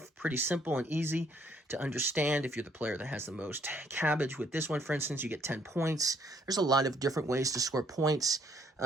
pretty simple and easy to understand. If you're the player that has the most cabbage with this one, for instance, you get 10 points. There's a lot of different ways to score points.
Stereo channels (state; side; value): normal; both; correlation 0.67